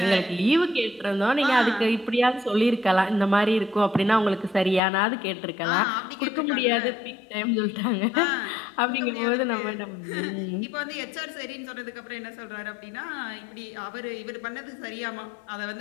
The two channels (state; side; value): drops out; right; at 4.8 s